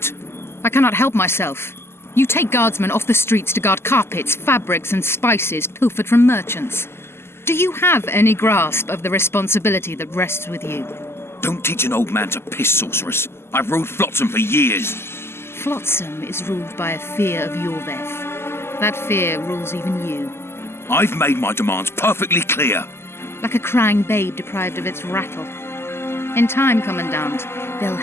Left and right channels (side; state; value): right; late; 0.12 ms